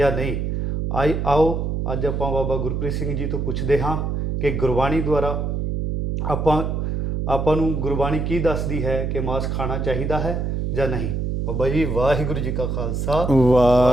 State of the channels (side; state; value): right; noise; hum, 1 dB below the sound